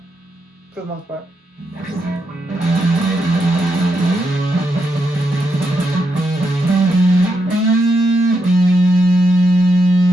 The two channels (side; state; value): both; normal; correlation 0.82